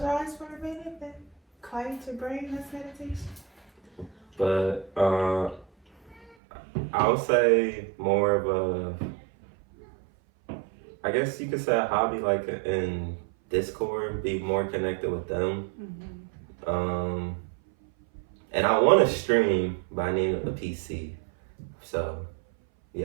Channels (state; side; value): drops out; left; at 6.3 s